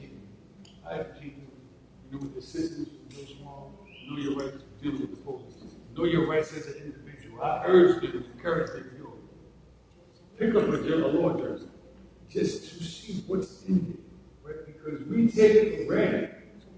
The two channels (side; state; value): both; identical; correlation 1.00